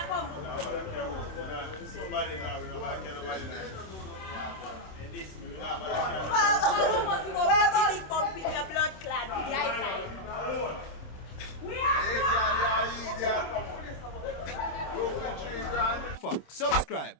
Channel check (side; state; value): right; late; 26 ms